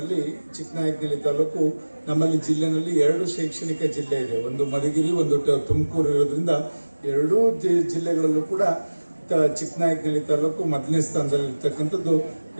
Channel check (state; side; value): inverted; both; correlation -1.00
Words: ಚಿಕ್ಕನಾಯಕನಹಳ್ಳಿ ತಾಲೂಕು ನಮ್ಮಲ್ಲಿ ಜಿಲ್ಲೆನಲ್ಲಿ 2 ಶೈಕ್ಷಣಿಕ ಜಿಲ್ಲೆ ಇದೆ. ಒಂದು ಮಧುಗಿರಿ, ಒಂದು ತುಮಕೂರು ಇರೋದ್ರಿಂದ 2 ಜಿಲ್ಲೆಗಳಲ್ಲೂ ಕೂಡ ಚಿಕ್ಕನಾಯಕನಹಳ್ಳಿ ತಾಲೂಕು ಮೊದಲನೇ ಸ್ಥಾನದಲ್ಲಿ ಇರ್ತಕ್ಕಂಥದ್ದು